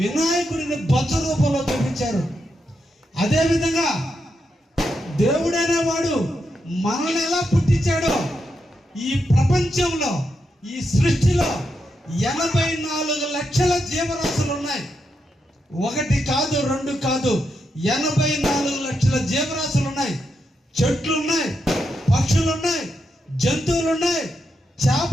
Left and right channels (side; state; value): both; normal; correlation 0.83